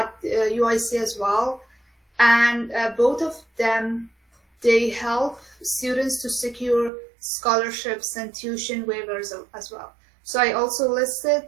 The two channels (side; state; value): left; drops out; at 6.9 s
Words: UIC as well. And both of them, they help students to secure scholarships and tuition waivers as well. So I also listed